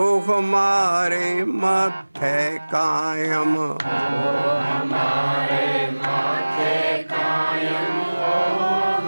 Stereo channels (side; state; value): both; inverted; correlation -1.00